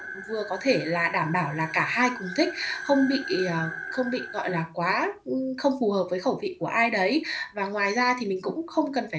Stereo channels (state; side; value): identical; both; correlation 1.00